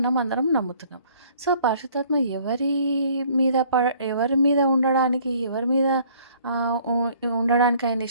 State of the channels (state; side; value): inverted; both; correlation -0.58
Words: అందరం నమ్ముతున్నాం. సో, పరిశుద్ధాత్మ ఎవరి మీద ఉండడానికి, ఎవరి మీద ఉండడానికి ఆయన